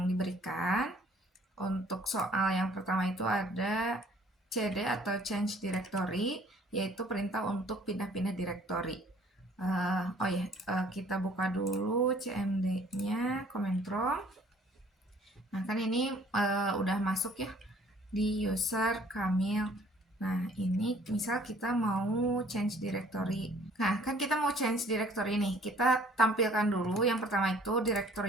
diberikan. Untuk soal yang pertama itu ada CD atau change directory, yaitu perintah untuk pindah-pindah directory. Kita buka dulu CMD-nya, command prompt. Nah, kan ini udah masuk ya di user Kamil. Nah, ini misal kita mau change directory. Nah, kan kita mau change directory nih. Kita tampilkan dulu yang pertama itu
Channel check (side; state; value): both; normal; correlation 0.56